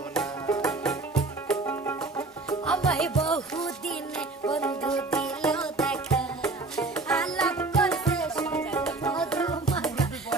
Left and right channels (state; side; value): quieter; left; 3.4 dB